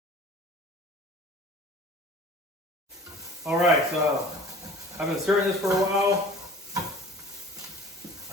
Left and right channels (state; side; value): normal; both; correlation 0.46